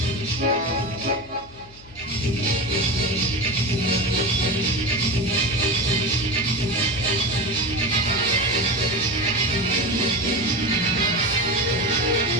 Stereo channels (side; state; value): left; noise; hum, 23 dB below the sound